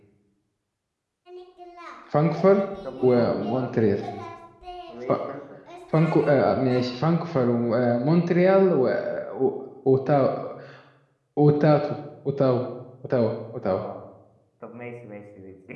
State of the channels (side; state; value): both; identical; correlation 1.00